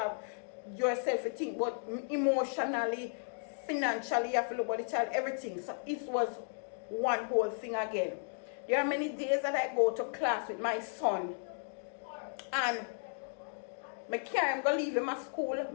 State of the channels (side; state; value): right; silent; digital silence